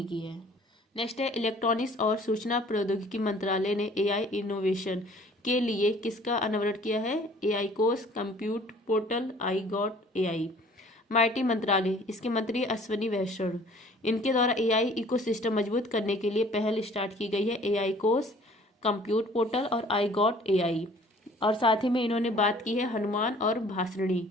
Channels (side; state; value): both; normal; correlation 0.53